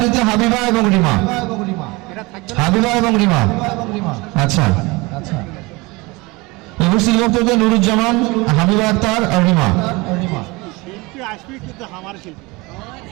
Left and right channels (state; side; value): quieter; left; 24.1 dB